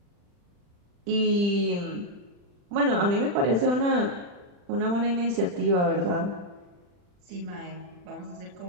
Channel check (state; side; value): late; left; 40 ms